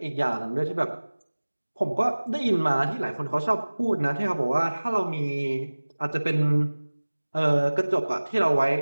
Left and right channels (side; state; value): both; inverted; correlation -1.00